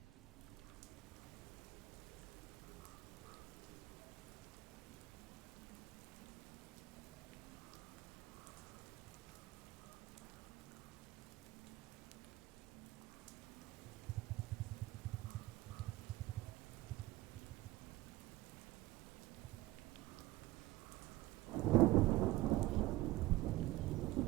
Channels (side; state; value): left; quieter; 17.9 dB